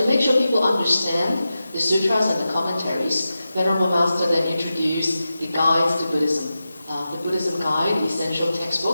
make sure people understand the sutras and the commentaries, Venerable Master then introduced the guides to Buddhism, the Buddhism Guide, the essential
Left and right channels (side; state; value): both; inverted; correlation -0.92